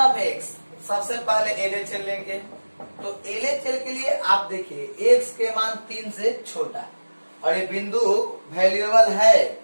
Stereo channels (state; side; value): inverted; both; correlation -1.00